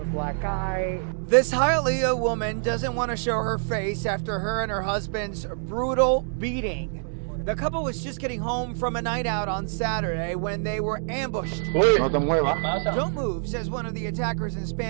black eye. This Hialeah woman doesn't want to show her face after her and her husband's brutal beating. The couple was just getting home from a night out on Saturday when they were ambushed. Don't move, says one of the attackers in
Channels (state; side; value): silent; left; digital silence